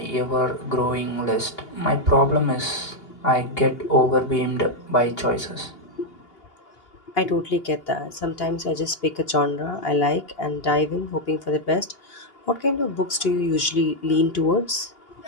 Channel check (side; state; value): right; late; 2.8 ms